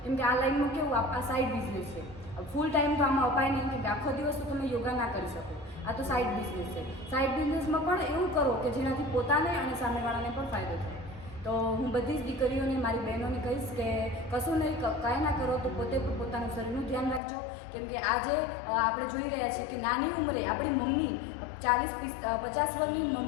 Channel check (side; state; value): right; drops out; at 17.2 s